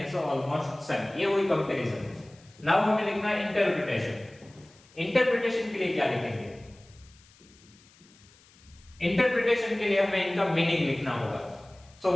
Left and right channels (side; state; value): left; noise; hiss, 27 dB below the sound